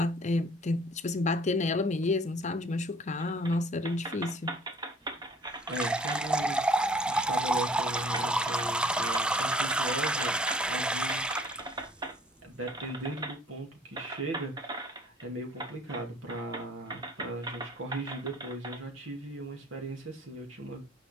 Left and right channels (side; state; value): both; normal; correlation 0.55